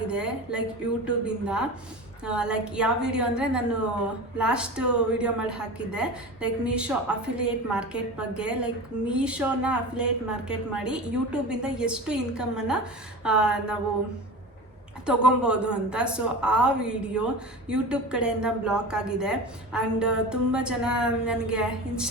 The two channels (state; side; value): normal; both; correlation 0.32